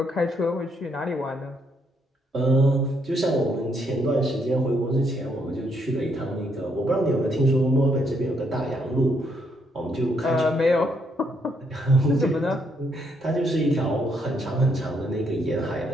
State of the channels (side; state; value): both; normal; correlation 0.74